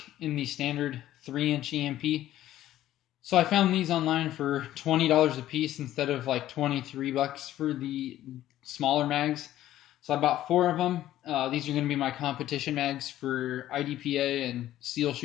in the standard 3-inch EMP. So I found these online for $20 a piece instead of like $23 for the smaller mags. So I bought 4 of them. These are going to be my competition mags for IDPA and seal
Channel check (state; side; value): quieter; right; 13.4 dB